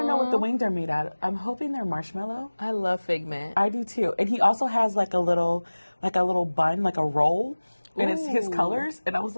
know what the wings are made out of. I'm hoping they're marshmallow. I love figment. I do too. And he also has like a little bun, like a roll, and it's his colors. And I was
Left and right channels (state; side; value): inverted; both; correlation -1.00